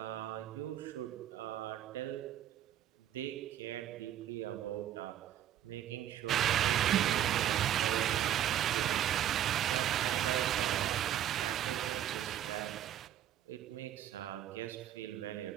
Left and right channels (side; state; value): left; quieter; 11.1 dB